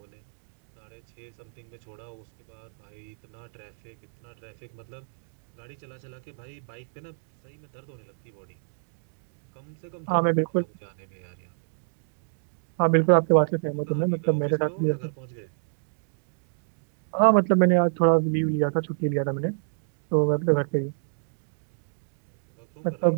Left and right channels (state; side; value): silent; left; digital silence